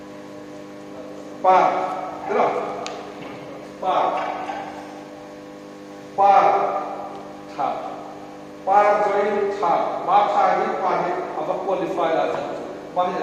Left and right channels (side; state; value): both; identical; correlation 1.00